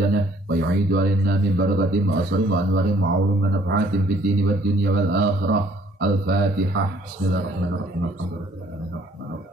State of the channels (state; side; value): normal; both; correlation 0.61